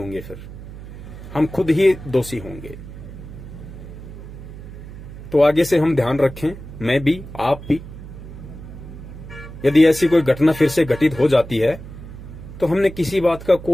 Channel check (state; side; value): noise; right; hum, 13 dB below the sound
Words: फिर हम खुद ही दोषी होंगे। तो आगे से हम ध्यान रखें, मैं भी, आप भी। यदि ऐसी कोई घटना फिर से घटित हो जाती है तो हमने किसी बात का